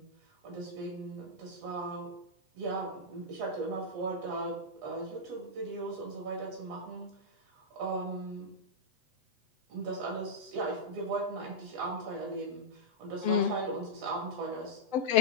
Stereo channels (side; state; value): left; late; 8.0 ms